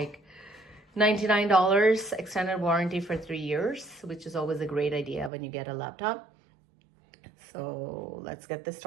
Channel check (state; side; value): drops out; left; at 5.3 s